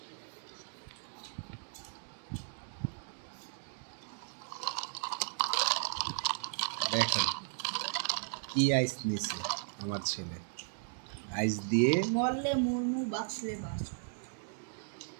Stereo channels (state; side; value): silent; left; digital silence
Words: দেখেন কি আইস নিছে আমার ছেলে। আইস দিয়ে মরলে মুরমু, বাঁচলে বাঁচ।